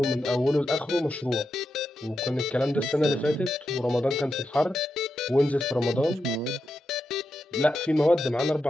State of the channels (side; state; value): both; normal; correlation 0.87